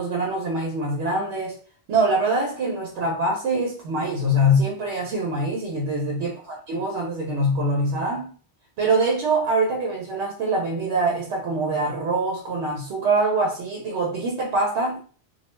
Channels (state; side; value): normal; both; correlation 0.02